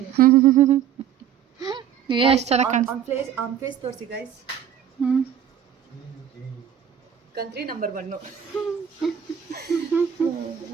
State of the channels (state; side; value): quieter; left; 9.1 dB